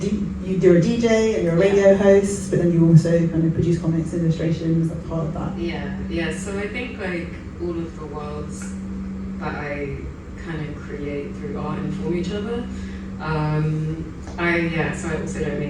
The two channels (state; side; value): identical; both; correlation 1.00